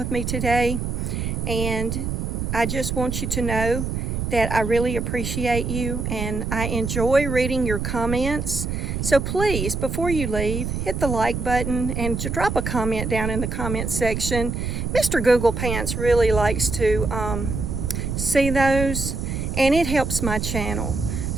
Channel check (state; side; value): noise; right; rumble, 3 dB below the sound